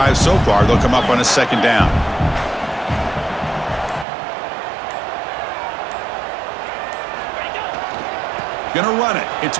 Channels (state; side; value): drops out; left; at 4.0 s